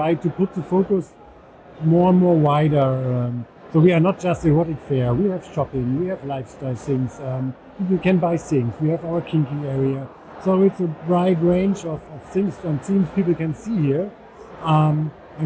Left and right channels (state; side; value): identical; both; correlation 1.00